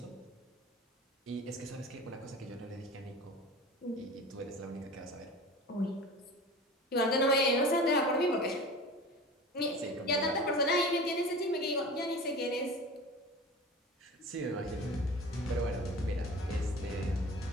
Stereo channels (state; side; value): normal; both; correlation 0.36